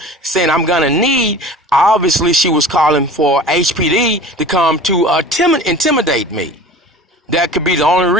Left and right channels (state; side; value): normal; both; correlation 0.40